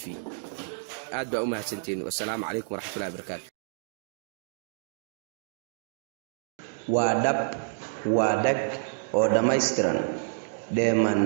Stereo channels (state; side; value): silent; left; digital silence